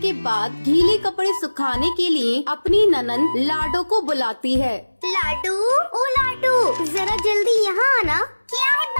बाद गीले कपड़े सुखाने के लिए अपनी ननद लाडो को बुलाती है। लाडो, ओ लाडो, जरा जल्दी यहाँ आना। क्या है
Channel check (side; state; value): both; inverted; correlation -1.00